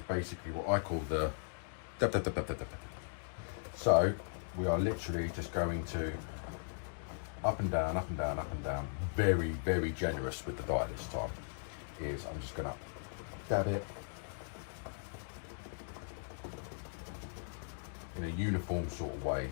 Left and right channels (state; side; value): silent; right; digital silence